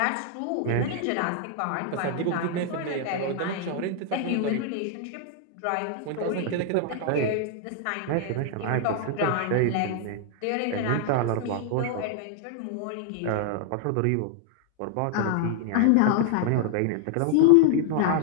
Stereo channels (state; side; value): different; both; correlation 0.00